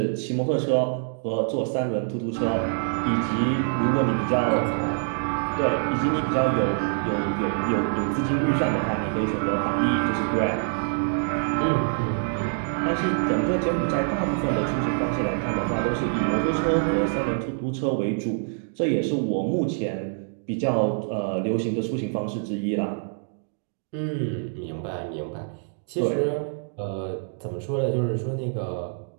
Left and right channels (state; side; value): silent; left; digital silence